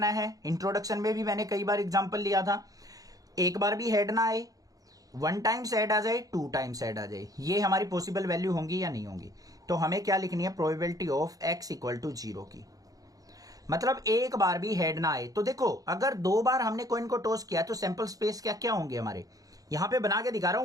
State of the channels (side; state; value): left; late; 0.17 ms